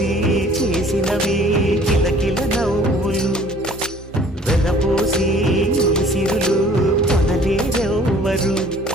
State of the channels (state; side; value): normal; both; correlation 0.53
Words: చేసినవి కిలకిల నవ్వులు వెలబోసి సిరులు కొనలేరెవ్వరు